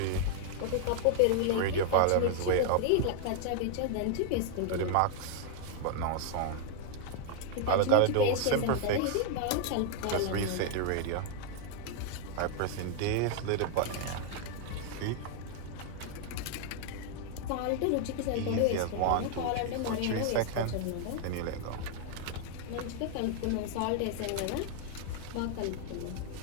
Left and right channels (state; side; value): different; both; correlation 0.00